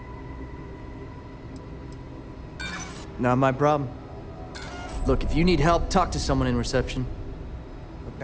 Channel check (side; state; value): both; identical; correlation 1.00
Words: Not my problem. Look, if you need help, talk to someone in reception. Look,